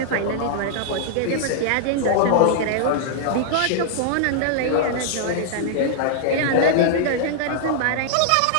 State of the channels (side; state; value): both; different; correlation -0.01